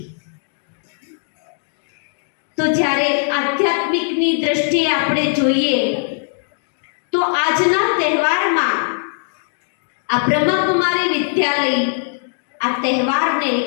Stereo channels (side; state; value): right; silent; digital silence